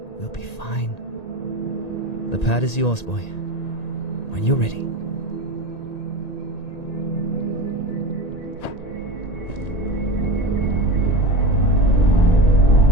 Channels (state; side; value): late; right; 1.9 ms